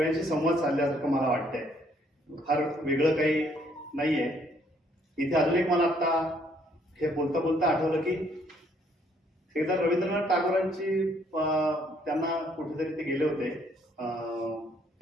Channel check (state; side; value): normal; both; correlation 0.66